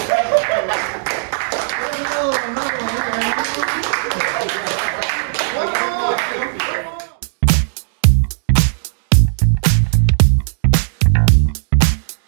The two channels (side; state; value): left; silent; digital silence